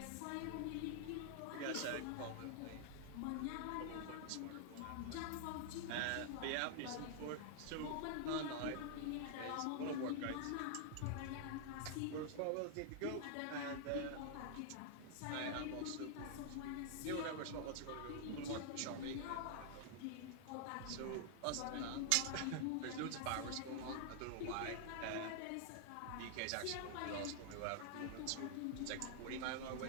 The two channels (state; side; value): different; both; correlation -0.01